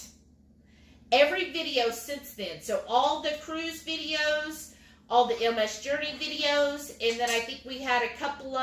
every video since then. So all the cruise videos, all the MS Journey videos, and then I think we had a couple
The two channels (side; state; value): both; identical; correlation 1.00